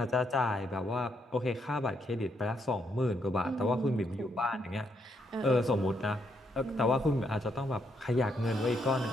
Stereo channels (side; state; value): both; normal; correlation 0.76